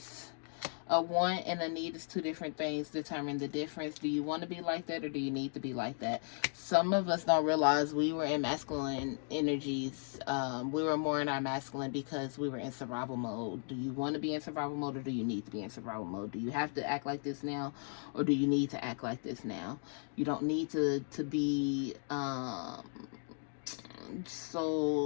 A want and a need is two different things. Determine the difference. Do you want to be like that, or do you need to be like that? Some of us don't realize we were in masculine energies. We were more in our masculine because we were in survival mode. Do you want to be in survival mode, or do you need to be in survival mode? Do you have to act like this now, or do you need to act like this now? You don't need to be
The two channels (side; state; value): right; silent; 54 dB below the other